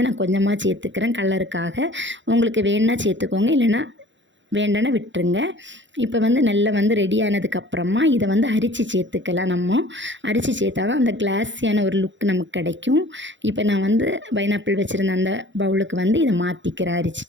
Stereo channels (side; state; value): left; late; 0.54 ms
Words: நான் கொஞ்சமாக சேர்த்துக்கிறேன், கலருக்காக. உங்களுக்கு வேணுன்னா சேர்த்துக்கோங்க, இல்லைன்னா வேண்டான விட்டுருங்க. இப்போ நல்லா ரெடி ஆனதுக்கப்புறமா இதை அரிச்சு சேர்த்துக்கலாம். நம்ம அரிச்சு சேர்த்தா தான் அந்த கிளாஸியான ஒரு லுக் நமக்கு கிடைக்கும். இப்போ நான் பைனாப்பிள் வச்சுருந்த அந்த பவுலுக்கு இதை மாற்றிக்கிறேன்.